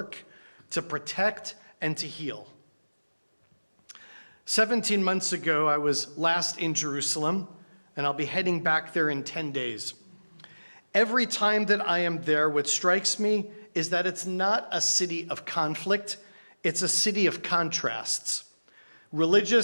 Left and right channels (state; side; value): inverted; both; correlation -1.00